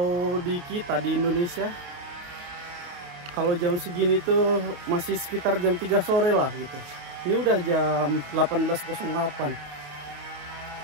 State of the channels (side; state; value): left; late; 28 ms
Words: di kita di Indonesia, kalau jam segini tuh masih sekitar jam 3 sore lah gitu. Ini udah jam 18.08.